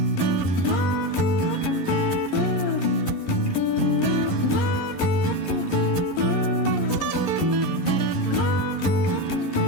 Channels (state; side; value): late; right; 11 ms